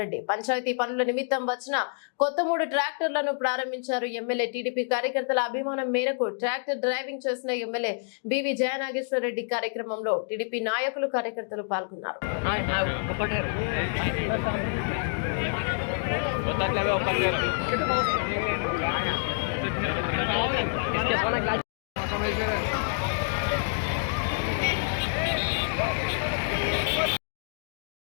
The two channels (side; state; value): right; silent; digital silence